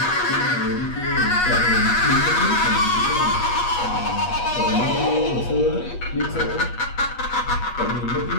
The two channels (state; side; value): late; right; 8.3 ms